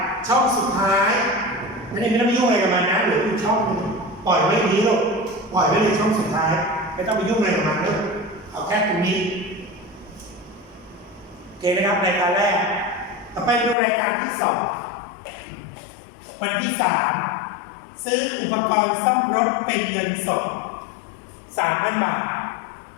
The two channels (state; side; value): drops out; right; at 13.8 s